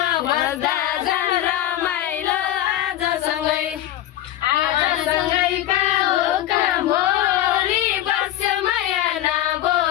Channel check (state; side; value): quieter; right; 13.1 dB